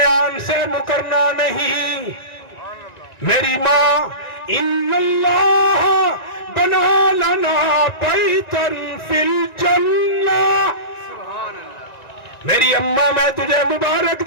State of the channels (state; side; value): late; right; 1.9 ms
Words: سے مکرنا نہیں. میری ماں ان اللہ بنا لنا بیتن فی الجنہ. میری اماں میں تجھے مبارک